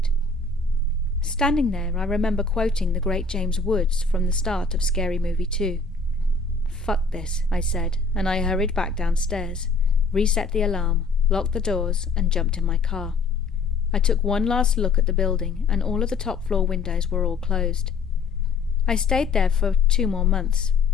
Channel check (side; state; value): right; quieter; 4.2 dB